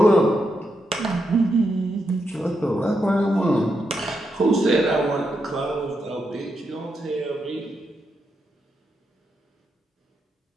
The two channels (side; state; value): both; normal; correlation 0.83